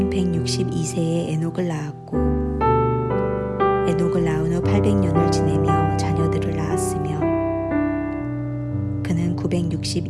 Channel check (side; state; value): both; identical; correlation 1.00